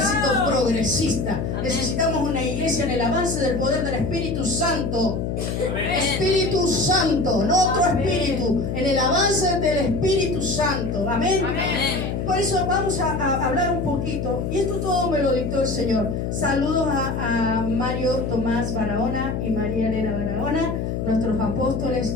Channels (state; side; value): noise; left; hum, 2 dB below the sound